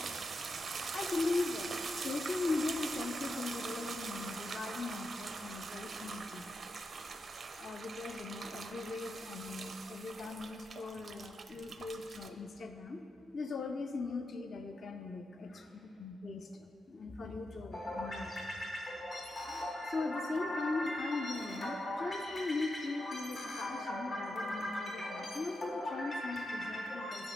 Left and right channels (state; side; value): normal; both; correlation 0.86